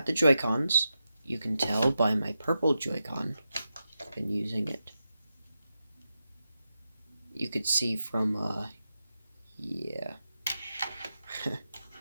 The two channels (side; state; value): both; inverted; correlation -0.89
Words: the Joy-Cons. You can tell by my purple Joy-Con. I've been using it. You could see from, yeah.